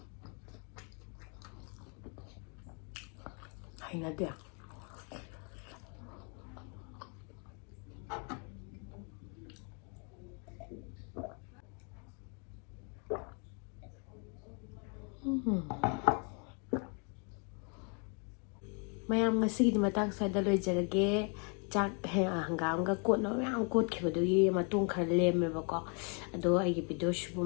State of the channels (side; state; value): right; quieter; 37.7 dB